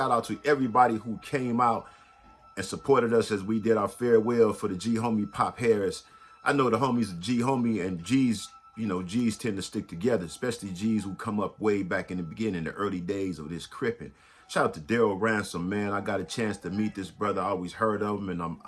out to everybody who came out and supported us as we did our farewell for the G homie Pop Harris. I know the homies G homie and G's, you know, G's tend to stick together, especially G's who come up way back in the beginning, the early days of this cripping. Shout out to Daryl Ransom, man. I got a chance to meet this brother. I always heard of him, and I'm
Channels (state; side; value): identical; both; correlation 1.00